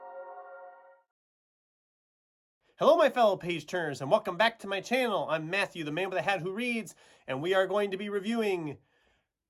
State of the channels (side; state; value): both; identical; correlation 1.00